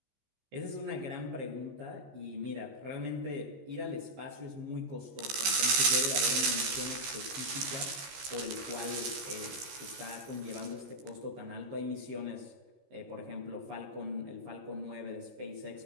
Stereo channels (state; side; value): late; left; 15 ms